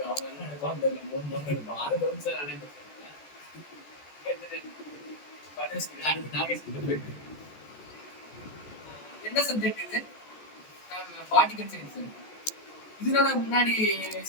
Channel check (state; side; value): late; right; 14 ms